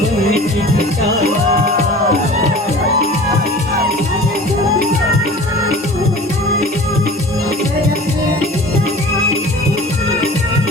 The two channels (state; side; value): normal; both; correlation 0.41